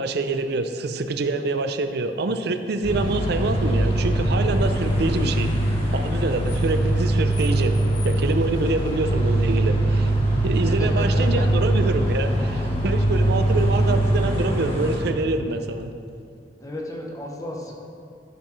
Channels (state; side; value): normal; both; correlation 0.71